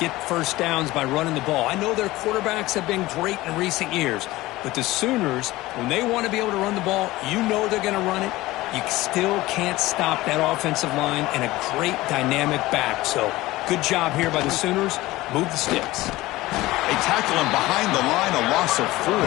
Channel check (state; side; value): quieter; right; 18.4 dB